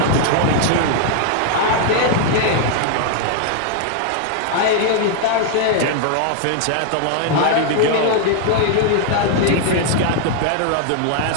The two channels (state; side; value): different; both; correlation 0.00